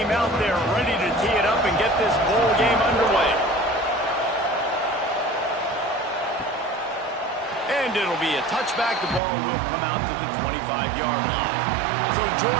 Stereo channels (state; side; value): drops out; left; at 9.2 s